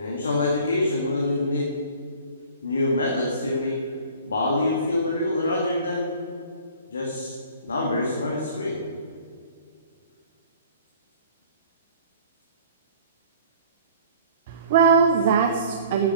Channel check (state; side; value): inverted; both; correlation -0.50